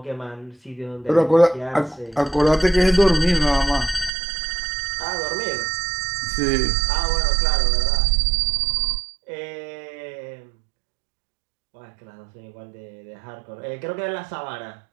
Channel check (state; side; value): drops out; left; at 4.1 s